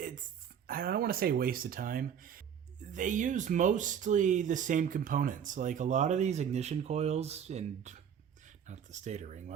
I don't want to say waste of time. They use mostly the same components. Like a lot of these ignition coils and not the stator ring,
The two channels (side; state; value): left; quieter; 8.3 dB